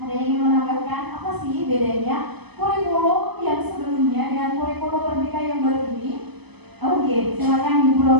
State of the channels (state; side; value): late; left; 0.99 ms